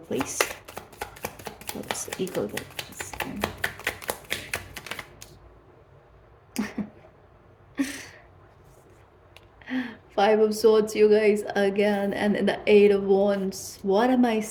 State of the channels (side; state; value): both; identical; correlation 1.00